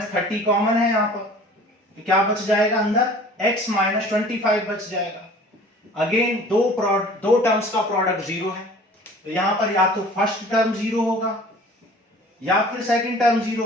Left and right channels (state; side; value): normal; both; correlation 0.47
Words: 30 कॉमन है यहाँ पर, तो क्या बच जाएगा अंदर x माइनस 25 बच जाएगा। अगेन दो टर्म्स का प्रोडक्ट जीरो है, तो यहाँ पर या तो फर्स्ट टर्म जीरो होगा या फिर सेकंड टर्म जीरो